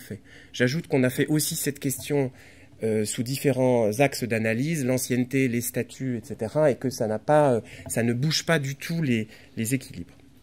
J'ajoute qu'on a fait aussi cette question sous différents axes d'analyse, l'ancienneté, les statuts, etc., et que ça ne bouge pas du tout les équilibres.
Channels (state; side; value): identical; both; correlation 1.00